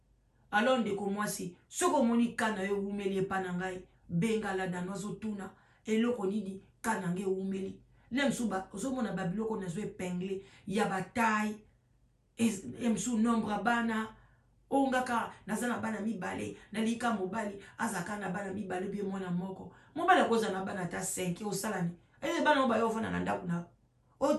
alors ndeko mwasi soko moni kana yo umeli pana ngai benga la danozo tuna eloko nini kana nge umeli lemsuba ozomona babiloko nazo épinglé ya bataille emsu nombre bana ongaka nazana bana mibale na lika mobali azaka na bana mibale bi mwana moko mobali akoza na bana ta 5 osalani ele bana oba yo vona na ndaku na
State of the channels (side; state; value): both; identical; correlation 1.00